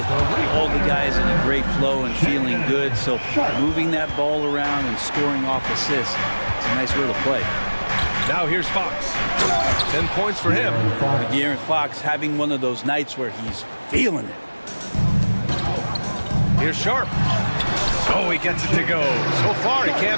all the guys in a great flow and feeling good. So moving that ball around and scoring off assists, it's a nice way to play. Now here's Fox. 10 points for him. De'Aaron Fox having one of those nights where he's feeling it. Here's Sharp. Oh, he gets it to go. So far, he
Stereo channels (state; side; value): inverted; both; correlation -1.00